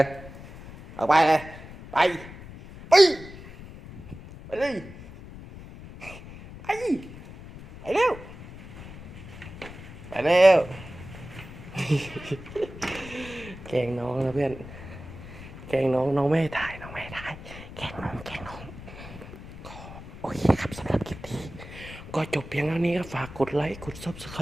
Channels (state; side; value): noise; left; rumble, 14 dB below the sound